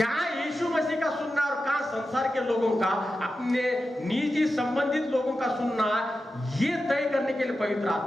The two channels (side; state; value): both; normal; correlation 0.91